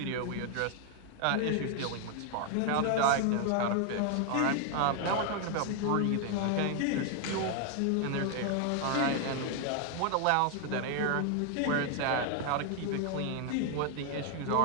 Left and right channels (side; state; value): both; different; correlation 0.00